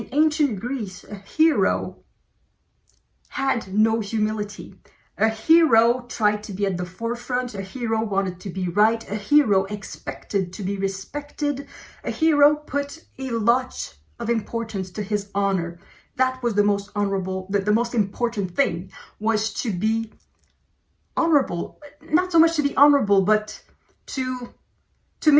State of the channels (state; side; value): identical; both; correlation 1.00